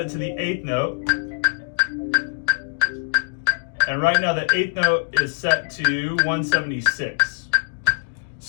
it to the 8th note. And right now the 8th note is set to 176.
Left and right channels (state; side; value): silent; right; digital silence